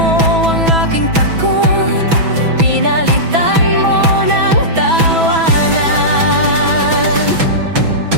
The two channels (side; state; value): left; late; 6.1 ms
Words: ang aking takot, Pinalitan mo ng tawanan.